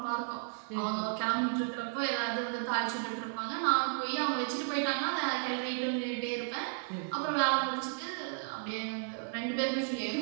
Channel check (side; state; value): left; silent; 55 dB below the other